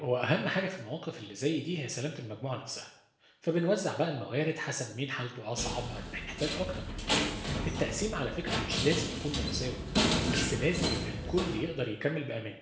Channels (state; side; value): identical; both; correlation 1.00